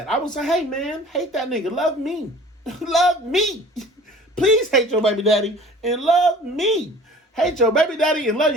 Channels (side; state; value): both; normal; correlation 0.46